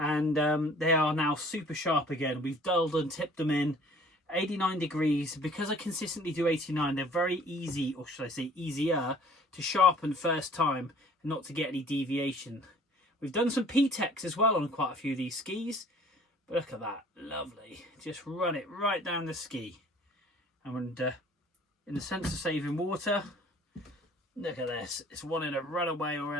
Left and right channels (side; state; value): both; normal; correlation 0.53